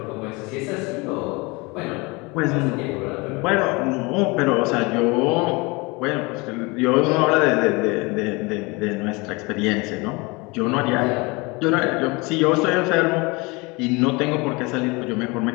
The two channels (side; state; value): right; quieter; 26.1 dB